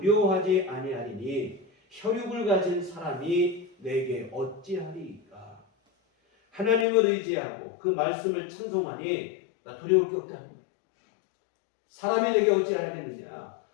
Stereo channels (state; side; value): drops out; right; at 6.9 s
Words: 아니하리니 혈육을 가진 사람이 내게 어찌하리이까. 하나님을 의지하고 그 말씀을 찬송하니 나 두려울 게 없다는 거예요. 사람이 내게 어찌하겠느냐.